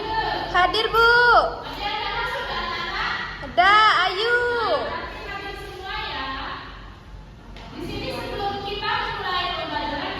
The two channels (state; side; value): identical; both; correlation 1.00